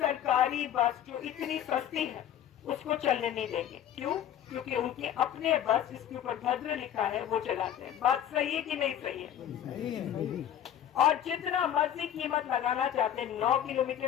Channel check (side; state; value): right; quieter; 10.4 dB